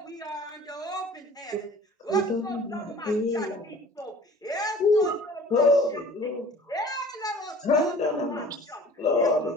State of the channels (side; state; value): both; normal; correlation 0.47